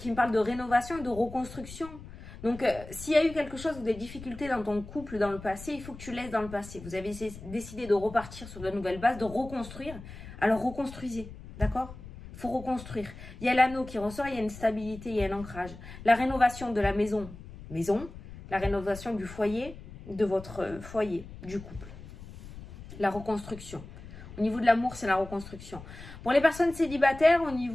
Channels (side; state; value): left; noise; rumble, 15 dB below the sound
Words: me parle de rénovation et de reconstruction. Donc, s'il y a eu quelque chose ou des difficultés dans ton couple dans le passé, il faut que tu laisses dans le passé. Vous avez décidé de repartir sur de nouvelles bases, de reconstruire. Alors, reconstruisez, d'accord? Il faut reconstruire. Il y a l'anneau qui ressort, il y a une stabilité, il y a un ancrage. La rénovation de la maison, la rénovation du foyer, de votre foyer, du couple. La reconstruction. Au niveau de l'amour, c'est la reconstruction. Pour les personnes célibataires, au